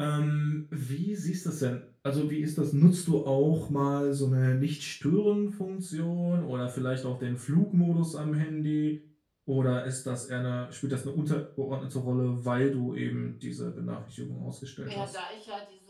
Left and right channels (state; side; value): identical; both; correlation 1.00